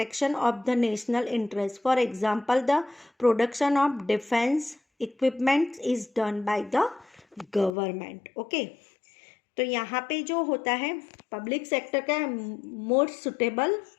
of the national interest. For example, the production of defense equipment is done by the government. Okay, तो यहाँ पे जो होता है public sector का more suitable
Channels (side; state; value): right; drops out; at 7.7 s